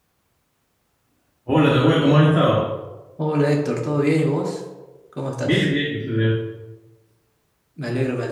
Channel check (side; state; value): both; identical; correlation 1.00